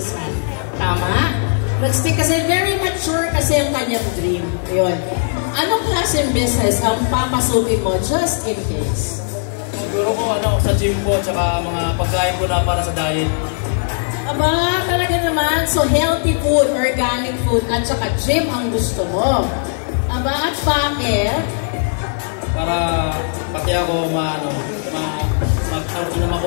Tama? Nag-stick kasi, very mature kasi ang kanyang dream. Yun. Anong klaseng business ang papasukin mo just in case? Siguro ko sa gym po, tsaka mga pagkain ko na para sa diet. Aba, talaga naman. So, healthy food, organic food, at saka gym ang gusto mo. Aba, at bakit? Para pati ako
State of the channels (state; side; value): silent; right; 67 dB below the other